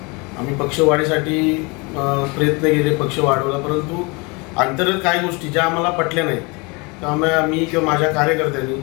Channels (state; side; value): quieter; right; 28.5 dB